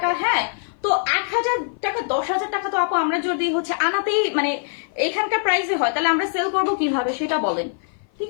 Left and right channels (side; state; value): right; silent; 55 dB below the other